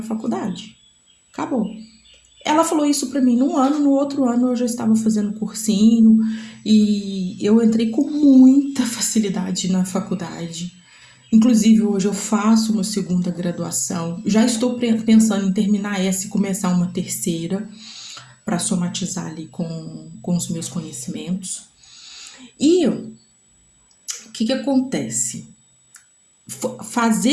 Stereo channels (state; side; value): identical; both; correlation 1.00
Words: faculdade. Acabou. Ela falou isso pra mim num ano, no outro ano eu já estava fazendo cursinho e eu entrei com muita facilidade na faculdade. Inclusive, hoje eu faço uma segunda graduação. Já estou pensando em terminar essa e começar uma terceira. para somatizar ali com os meus conhecimentos. E o que acontece?